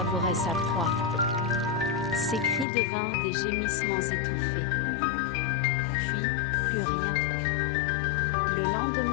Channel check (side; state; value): right; drops out; at 2.7 s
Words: sa proie. Ses cris devinrent des gémissements étouffés. Puis, plus rien. Le